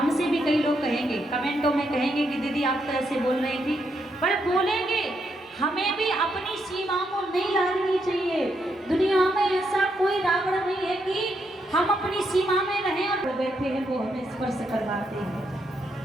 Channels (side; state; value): both; normal; correlation 0.79